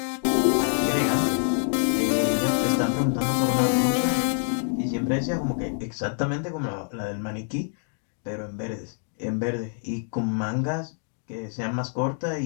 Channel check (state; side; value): silent; right; 61 dB below the other